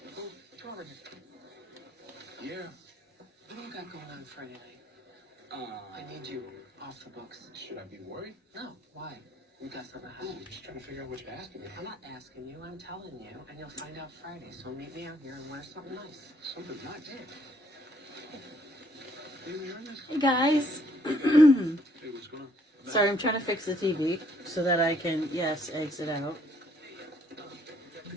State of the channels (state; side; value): normal; both; correlation 0.67